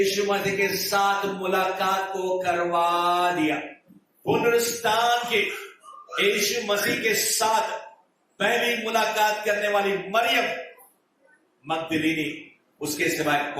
मसीह के साथ मुलाकात को करवा दिया। पुनरुत्थान के यीशु मसीह के साथ पहली मुलाकात करने वाली मरियम मगदलीनी, उसके सिवाय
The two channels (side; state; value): both; identical; correlation 1.00